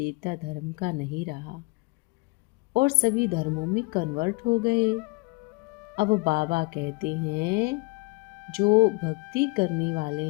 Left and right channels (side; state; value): right; quieter; 26.6 dB